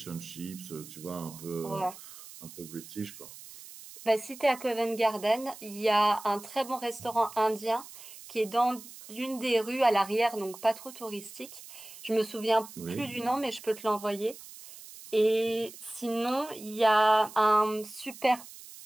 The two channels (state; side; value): noise; right; hiss, 16 dB below the sound